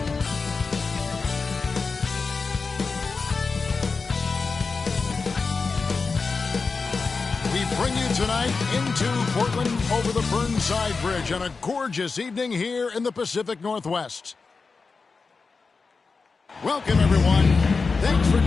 We bring you tonight into Portland over the Burnside Bridge on a gorgeous evening here in the Pacific Northwest. Welcome, everyone. Thanks for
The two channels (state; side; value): quieter; right; 4.5 dB